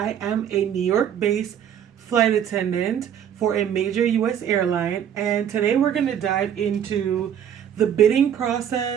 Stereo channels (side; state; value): left; quieter; 9.3 dB